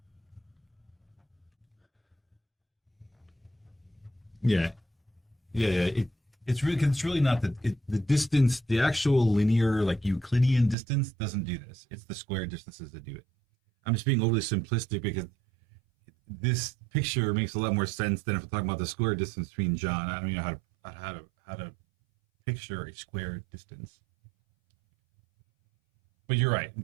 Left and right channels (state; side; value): drops out; left; at 10.8 s